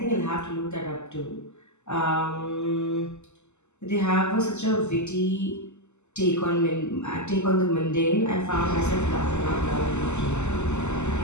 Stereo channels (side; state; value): right; late; 0.83 ms